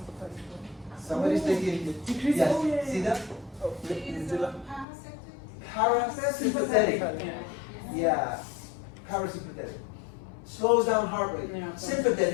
Somebody's thinking, Decrease. yes, Oh, yeah, see yeah. that? Oh, Is medulla. parasympathetic? Parasympathetic. Yeah. Yeah, parasympathetic. Slows down heart rate. Yeah.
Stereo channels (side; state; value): right; drops out; at 4.9 s